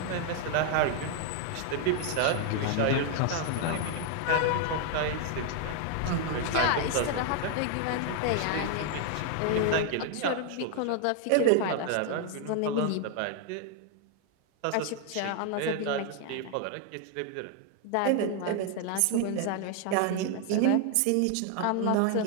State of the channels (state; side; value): different; both; correlation 0.00